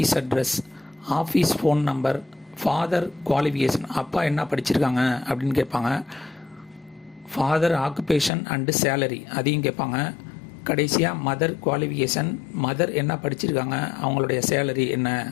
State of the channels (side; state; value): right; drops out; at 8.3 s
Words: office phone number, father qualification, அப்பா என்ன படிச்சிருக்காங்க அப்படின்னு கேட்பாங்க. ஃபாதர் ஆக்குபேஷன் அண்டு சேலரி அதையும் கேட்பாங்க. கடைசியாக மதர் குவாலிஃபிகேஷன், மதர் என்ன படிச்சிருக்காங்க, அவங்களுடைய சேலரி என்ன